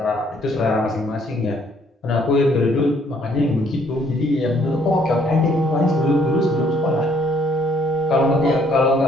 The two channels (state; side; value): normal; both; correlation 0.65